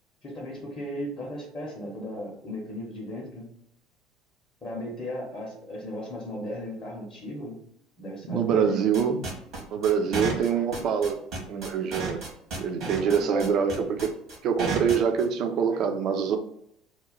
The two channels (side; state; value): left; quieter; 5.6 dB